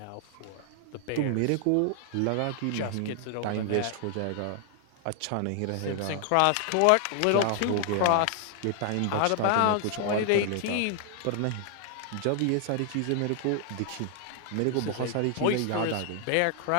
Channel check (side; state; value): both; different; correlation 0.00